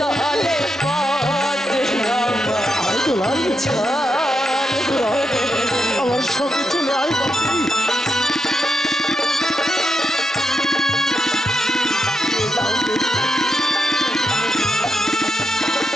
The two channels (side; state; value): both; normal; correlation 0.83